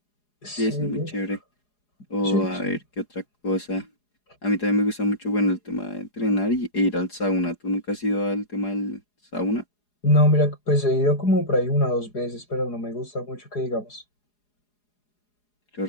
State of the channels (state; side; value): late; right; 4.8 ms